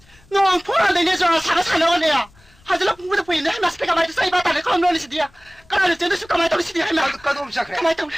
nó phun ra đây nè rồi sáng nó nè, hay là cũng được quên hay mà xì kamai say ba ta này không nói gì đi à, cái này là chuyện kamai tao đi xì đi hay mà, cái đom sắc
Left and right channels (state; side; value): noise; left; rumble, 29 dB below the sound